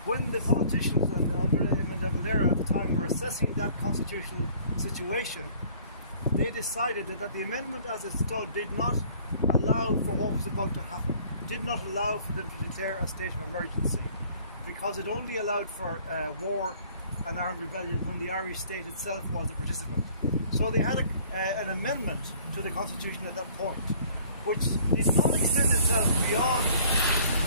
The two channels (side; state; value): both; inverted; correlation -0.55